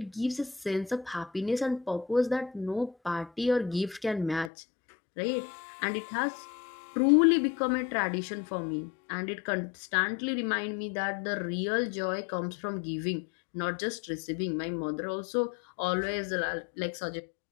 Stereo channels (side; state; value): right; drops out; at 4.5 s